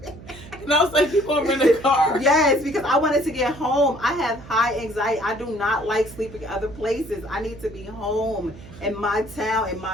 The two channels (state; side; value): noise; right; hum, 17 dB below the sound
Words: And I was like, you going to rent a car? Yes, because I wanted to get home. I have high anxiety. I do not like sleeping other places. I need to be home in my town, in